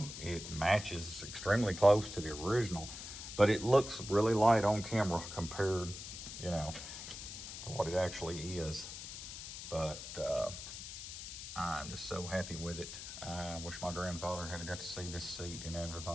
It matches extremely close to the original, but it looks really light on camera compared, you know, to what it actually is. But I'm just so happy with it. I wish my grandfather had got to see this seat and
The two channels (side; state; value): left; noise; hiss, 9 dB below the sound